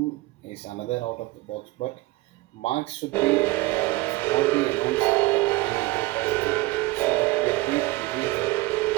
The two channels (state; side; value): quieter; left; 20.0 dB